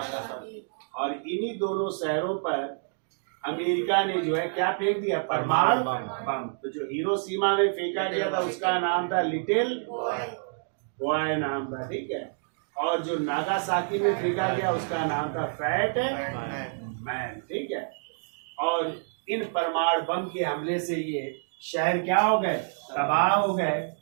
और इन्हीं दोनों शहरों पर अमेरिका ने जो है क्या फेंक दिया? परमाणु बम। तो जो हिरोशिमा में फेंका गया था उसका नाम था लिटिल बॉय नाम था, ठीक है। और जो नागासाकी में फेंका गया उसका नाम था फैट मैन, ठीक है। और इन परमाणु बम के हमले से ये शहर क्या हो गए? तबाह हो गए।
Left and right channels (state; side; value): silent; left; digital silence